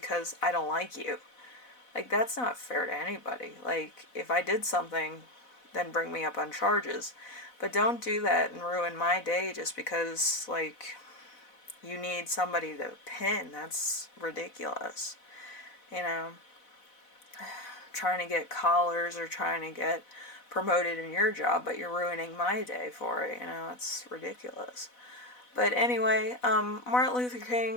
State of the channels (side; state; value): right; late; 4.0 ms